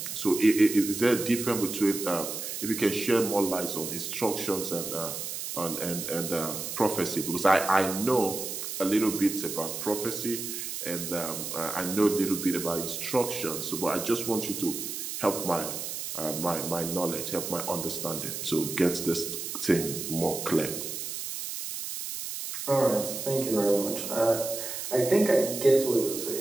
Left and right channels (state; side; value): noise; right; hiss, 6 dB below the sound